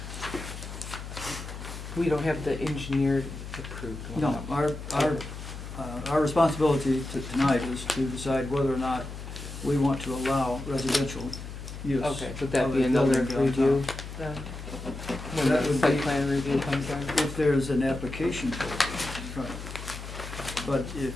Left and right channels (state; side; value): noise; left; hum, 10 dB below the sound